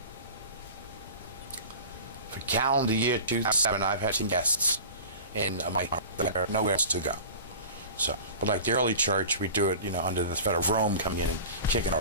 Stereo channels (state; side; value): inverted; both; correlation -0.37